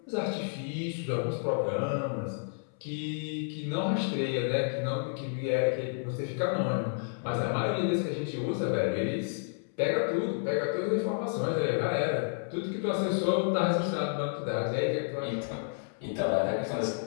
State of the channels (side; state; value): right; silent; 57 dB below the other